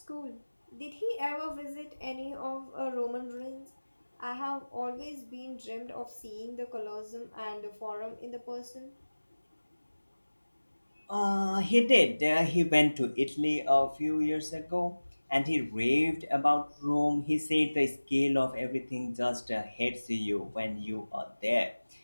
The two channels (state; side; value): inverted; both; correlation -1.00